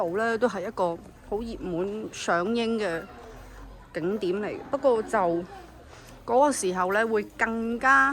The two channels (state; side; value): identical; both; correlation 1.00